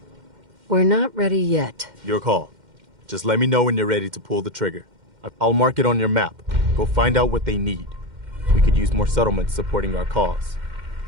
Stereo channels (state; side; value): late; left; 2.1 ms